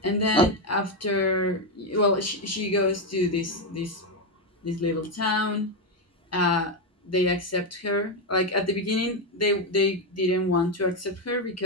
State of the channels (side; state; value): both; normal; correlation 0.07